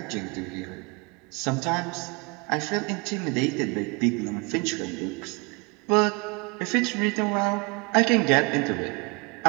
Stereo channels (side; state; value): left; quieter; 29.1 dB